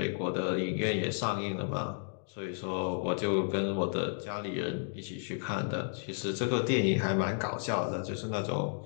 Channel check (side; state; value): right; silent; digital silence